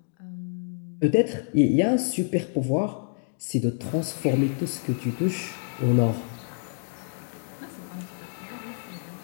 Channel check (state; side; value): silent; right; digital silence